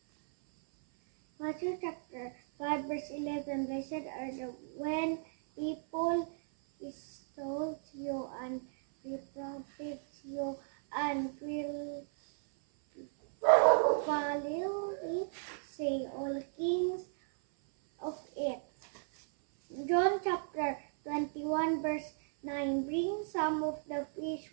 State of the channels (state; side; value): silent; left; 54 dB below the other